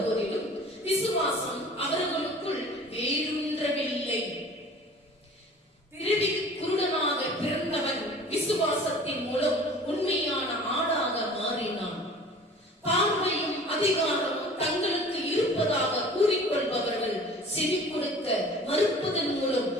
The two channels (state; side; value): normal; both; correlation 0.45